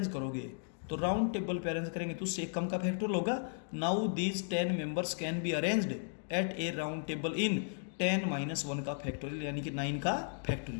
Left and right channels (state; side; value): silent; right; digital silence